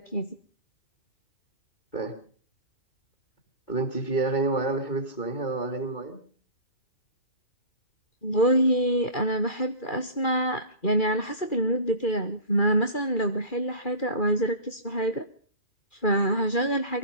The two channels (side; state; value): right; late; 2.4 ms